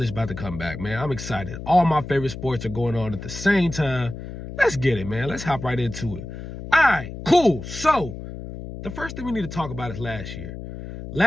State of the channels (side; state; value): left; noise; hum, 10 dB below the sound